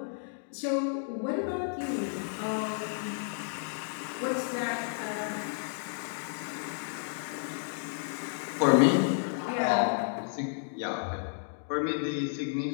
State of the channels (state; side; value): silent; right; digital silence